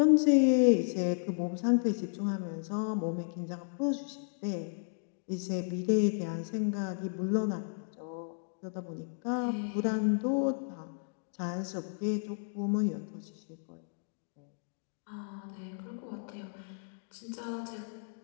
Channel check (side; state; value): right; silent; digital silence